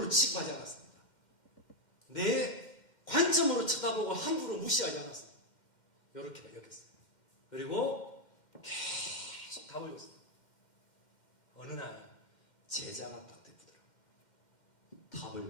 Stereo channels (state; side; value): late; right; 2.1 ms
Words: 취급하지 않았습니다. 내 관점으로 쳐다보고 함부로 무시하지 않았습니다. 이렇게 여겼어요. 그리고 계속 답을 줬어요. 어느 날 제자가 딱 되더라고요.